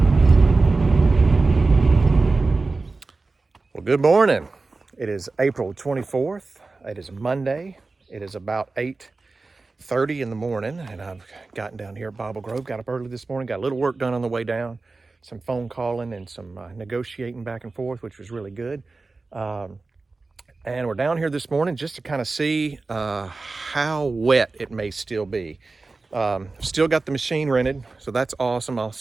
Good morning. It is April 24th. It is Monday. It is about 8:30 in the morning, and I've gotten down here at Bible Grove. Got up early this morning, got a little work done on the way down, some phone calling and some negotiating back and forth, which was really good. And we're down here this morning just to kind of see how wet it may still be. Still got the machine rented, so that's awesome. I'll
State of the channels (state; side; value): quieter; left; 3.7 dB